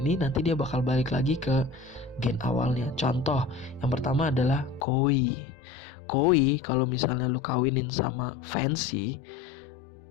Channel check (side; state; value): right; drops out; at 4.9 s